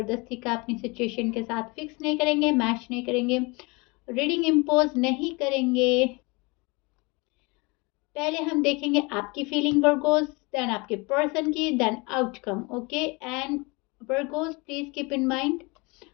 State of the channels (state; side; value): quieter; right; 27.1 dB